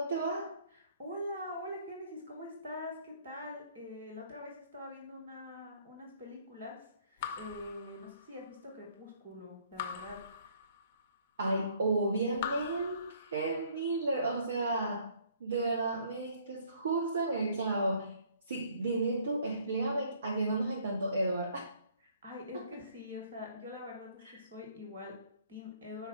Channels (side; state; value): both; inverted; correlation -0.61